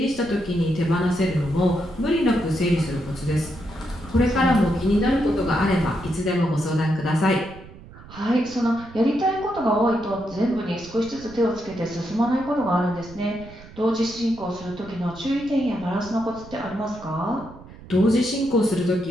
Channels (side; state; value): right; noise; rumble, 18 dB below the sound